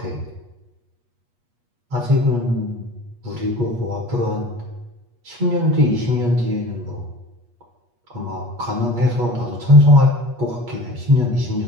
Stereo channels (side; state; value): left; late; 8.3 ms